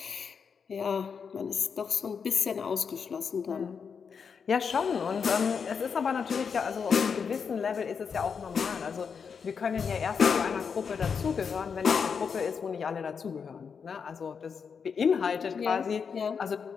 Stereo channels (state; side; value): quieter; right; 6.2 dB